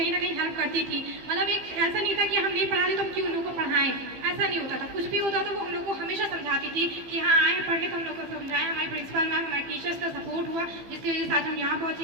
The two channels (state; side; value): late; left; 15 ms